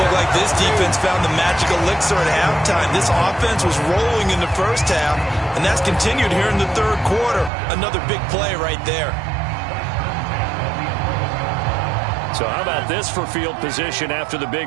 like this defense found the magical elixir at halftime. This offense was rolling in the first half, and that's continued here in the third quarter. Another big play right there. So how about this for field position after the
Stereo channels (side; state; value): left; drops out; at 7.5 s